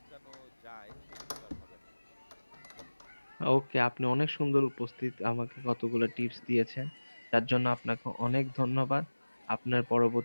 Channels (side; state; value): both; inverted; correlation -1.00